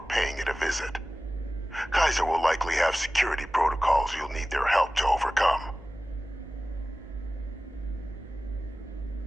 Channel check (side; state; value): both; normal; correlation 0.96